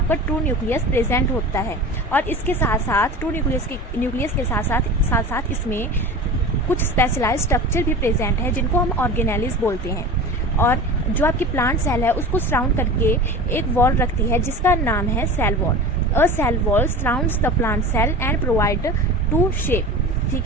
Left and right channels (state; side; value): normal; both; correlation 0.33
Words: ट्रू न्यूक्लियस प्रेजेंट होता है, और इसके साथ साथ ट्रू न्यूक्लियस के साथ साथ इसमें कुछ स्पेशलाइज्ड स्ट्रक्चर भी प्रेजेंट है जिनको हम ऑर्गेनेलिस बोलते हैं। और जो आपकी प्लांट सेल है उसको सराउंड करके एक वॉल रखती है जिसका नाम है cell wall. A cell wall surrounds the plant cell and provide to shape, ठीक